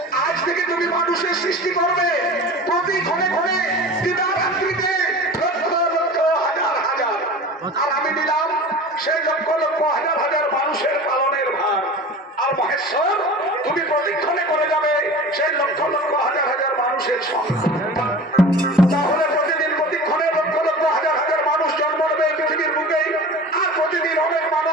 আজ থেকে তুমি মানুষের সৃষ্টি করবে প্রতি ক্ষণে ক্ষণে দিবারাত্রিতে লক্ষ লক্ষ হাজার হাজার। আর আমি দিলাম সেই লক্ষ লক্ষ হাজার হাজার মানুষের পালনের ভার। আর মহেশ্বর, তুমি প্রতিক্ষণে করে যাবে সেই লক্ষ লক্ষ হাজার হাজার মানুষের সঙ্গে। তাহলে প্রতিদিন প্রতিক্ষণে লক্ষ লক্ষ হাজার হাজার মানুষ জন্ম নেবে এই পৃথিবীর বুকেই। আর প্রতিদিন অনেক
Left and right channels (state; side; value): normal; both; correlation 0.37